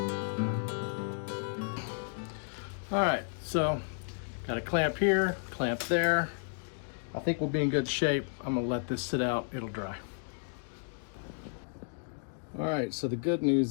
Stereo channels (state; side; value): silent; right; digital silence